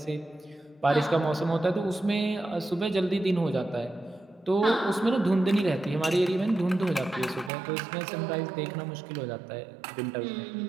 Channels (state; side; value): drops out; left; at 7.5 s